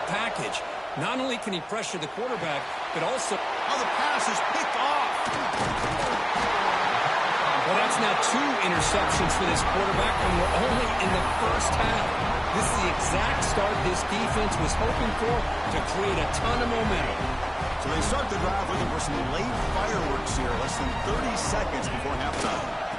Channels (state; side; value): identical; both; correlation 1.00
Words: package. Not only can he pressure the quarterback, but also... Oh, the pass is picked off. Well, that's now 2 interceptions for this quarterback when we're only in the first half. This is the exact start this defense was hoping for to create a ton of momentum. So they start the drive looking for some late fireworks here, less than 30 seconds before halftime.